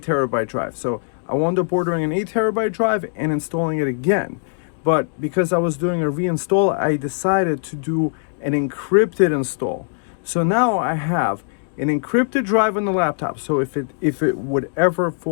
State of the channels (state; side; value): silent; right; digital silence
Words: terabyte drive. So I wound up ordering an 8 terabyte drive and installing it again. But because I was doing a reinstall, I decided to do an encrypted install. So now I have an encrypted drive on the laptop. So if it would ever